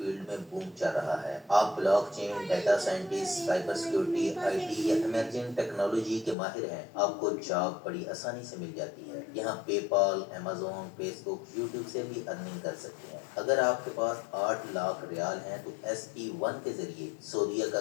में बूम चल रहा है। आप blockchain, data scientist, cyber security, IT या इमर्जिंग टेक्नोलॉजी के माहिर हैं, आपको जॉब बड़ी आसानी से मिल जाती है। यहाँ पेपाल, अमेजोन, फेसबुक, यूट्यूब से भी अर्निंग कर सकते हैं। अगर आपके पास 8 लाख रियाल हैं तो SE1 के जरिए सऊदीया का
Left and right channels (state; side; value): drops out; right; at 6.4 s